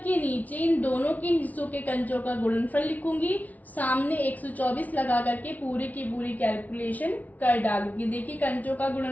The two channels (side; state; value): right; late; 0.075 ms